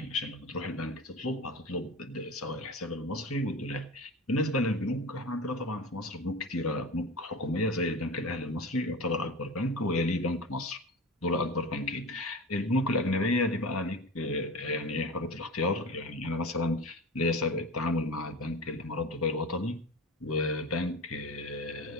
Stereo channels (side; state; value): both; normal; correlation 0.30